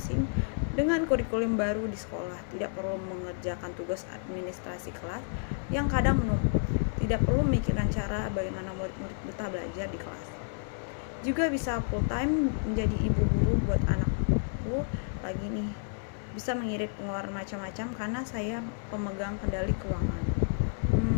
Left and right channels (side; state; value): right; silent; 57 dB below the other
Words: dengan kurikulum baru di sekolah, tidak perlu mengerjakan tugas administrasi kelas yang kadang menumpuk, tidak perlu memikirkan cara bagaimana murid-murid betah belajar di kelas. Juga bisa full time menjadi ibu guru buat anakku lagi nih. Bisa mengirit pengeluaran macam-macam karena saya pemegang kendali keuangan.